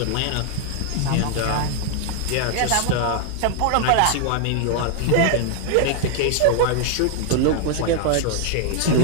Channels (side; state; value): both; different; correlation 0.00